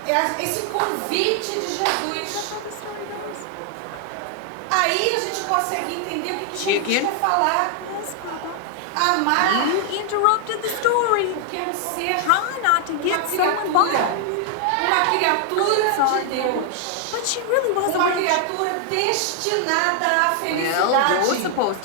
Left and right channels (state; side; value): different; both; correlation 0.00